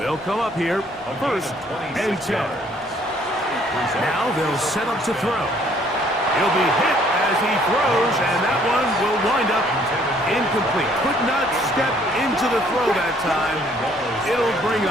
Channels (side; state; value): both; normal; correlation 0.62